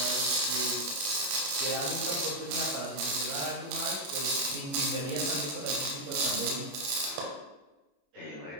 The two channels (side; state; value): left; late; 22 ms